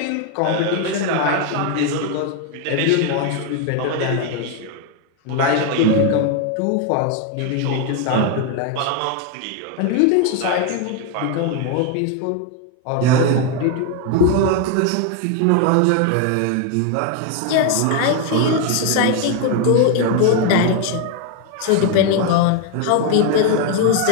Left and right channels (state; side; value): different; both; correlation 0.01